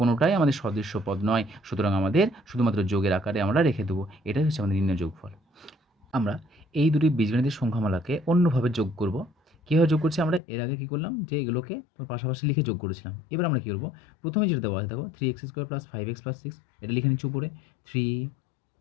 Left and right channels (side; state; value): right; drops out; at 10.4 s